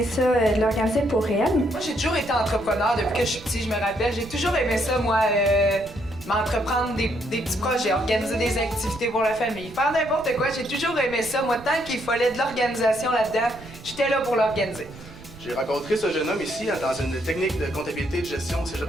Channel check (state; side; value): noise; right; rumble, 18 dB below the sound